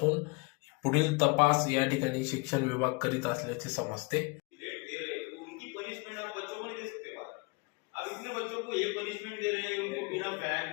पुढील तपास या ठिकाणी शिक्षण विभाग करीत असल्याचे समजते. उनकी पनिशमेंट आप बच्चों को नहीं दे सकते बाहर. आप इतने बच्चों को ये पनिशमेंट दे रहे हैं, उनको बिना फैन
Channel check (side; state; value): right; quieter; 29.8 dB